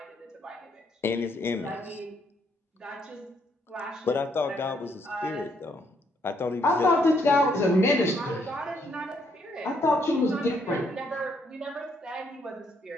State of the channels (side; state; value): both; normal; correlation 0.71